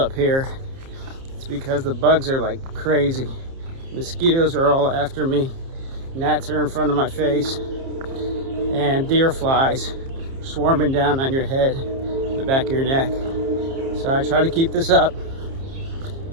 here. It's because the bugs are like crazy. Mosquitoes are all after me. Gnats are in front of my face. And deer flies swarming down on your head, the back of your neck. So I try to keep this up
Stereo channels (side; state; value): left; late; 30 ms